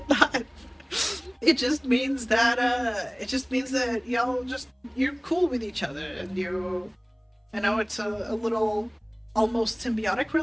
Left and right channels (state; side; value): identical; both; correlation 1.00